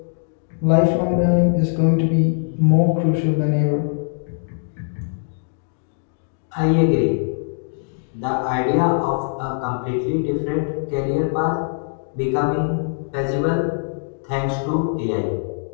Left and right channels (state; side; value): silent; right; digital silence